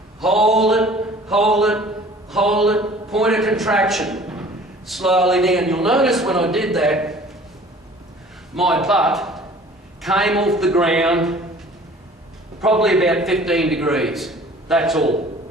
hold it, hold it, hold it, pointer contraction, slowly down. You'll notice when I did that, my butt came off the ground probably about 15 degrees. That's all.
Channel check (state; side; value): normal; both; correlation 0.49